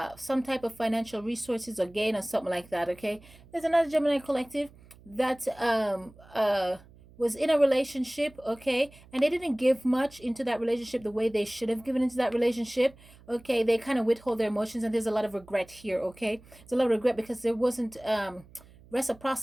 some type of financial resources or gain or something like that. Okay, there's another Gemini collective that was in a relationship, okay, and they didn't give much into that relationship the way they should have given into that relationship. Okay, they kind of withhold their emotions, and there's a lot of regret here. Okay, there's a lot of regret because there wasn't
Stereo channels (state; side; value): noise; right; hum, 24 dB below the sound